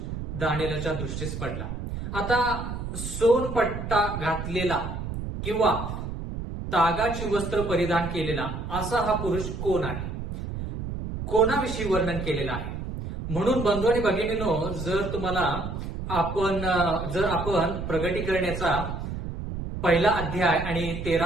दानिएलच्या दृष्टीस पडला. आता सोनपट्टा घातलेला किंवा तागाची वस्त्र परिधान केलेला असा हा पुरुष कोण आहे, कोणाविषयी वर्णन केलेलं आहे. म्हणून बंधू आणि भगिनींनो, जर आपण प्रगटीकरणाचा 1 अध्याय आणि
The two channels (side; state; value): right; noise; rumble, 6 dB below the sound